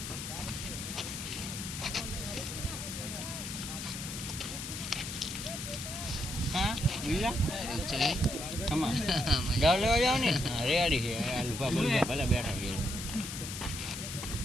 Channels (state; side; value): noise; left; hiss, 7 dB below the sound